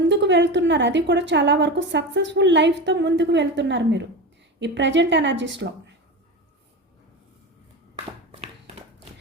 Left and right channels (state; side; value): normal; both; correlation 0.24